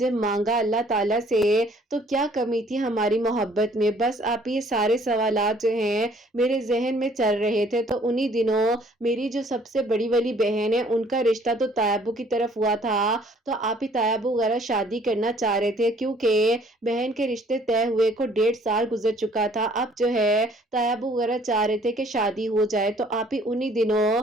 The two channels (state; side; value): normal; both; correlation 0.58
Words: مانگا اللہ تعالیٰ سے، تو کیا کمی تھی ہماری محبت میں؟ بس آپ یہ سارے سوالات جو ہیں میرے ذہن میں چل رہے تھے۔ تو انہی دنوں میری جو سب سے بڑی والی بہن ہے ان کا رشتہ تو طیبو کی طرف ہوا تھا، تو آپ ہی طیبو وغیرہ شادی کرنا چاہ رہے تھے، کیونکہ بہن کے رشتے طے ہوئے کو 1.5 سال گزر چکا تھا، اب جو ہے طیبو وغیرہ چاہ رہے تھے کہ شادی ہو جائے۔ تو آپ ہی انہی دنوں